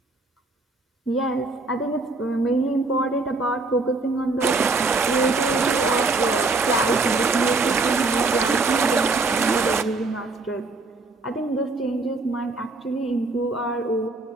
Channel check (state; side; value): quieter; left; 3.5 dB